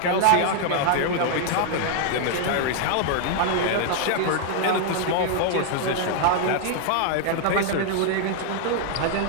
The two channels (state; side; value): different; both; correlation 0.00